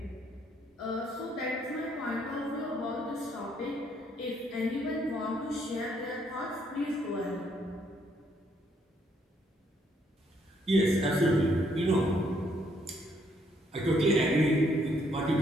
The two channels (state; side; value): normal; both; correlation 0.70